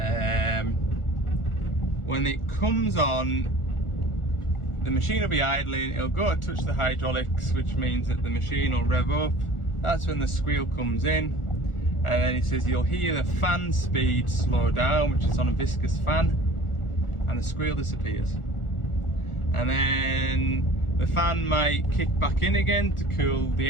When it comes on, the machine will be idling, it'll go to touch the hydraulics, which means that the machine will rev up. That's when the squeal comes in, and then he says you'll hear the fan speed slow down, which is on a viscous fan, and the squeal disappears. And then the fan might kick back in again to cool the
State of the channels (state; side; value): late; right; 1.4 ms